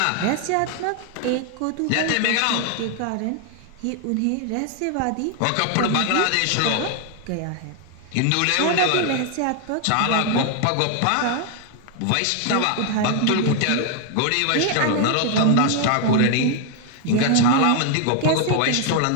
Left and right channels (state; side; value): different; both; correlation 0.00